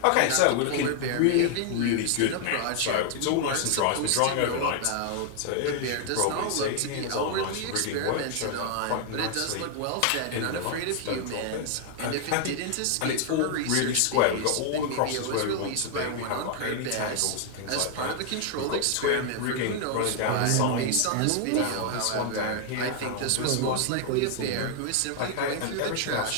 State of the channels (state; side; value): different; both; correlation 0.00